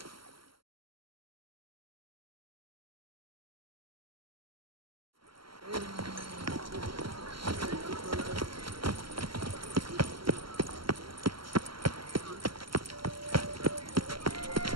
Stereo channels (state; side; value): late; left; 0.74 ms